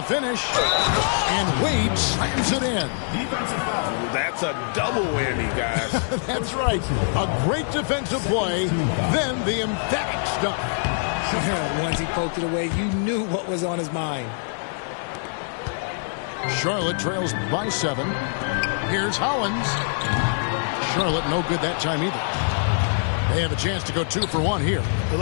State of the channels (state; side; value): silent; right; digital silence